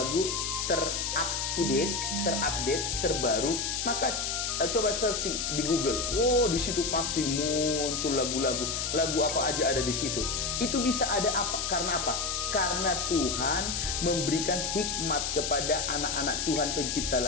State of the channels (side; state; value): left; noise; hiss, 1 dB below the sound